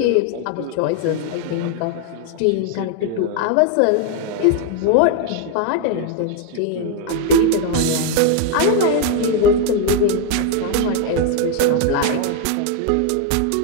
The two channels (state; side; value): different; both; correlation 0.01